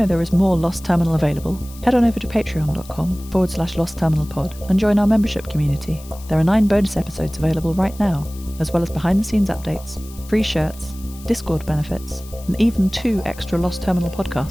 there is more Lost Terminal available? Head on over to patreon.com/lostterminalpod and join our membership community. There are 9 bonus episodes available right now, as well as behind-the-scenes updates, free shirts, Discord benefits, and even 2 extra Lost Terminal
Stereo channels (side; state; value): left; noise; hiss, 20 dB below the sound